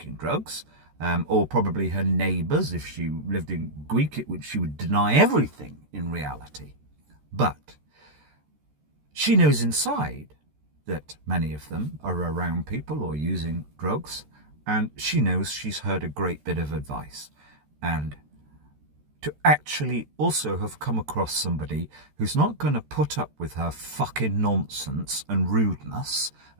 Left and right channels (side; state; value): left; late; 13 ms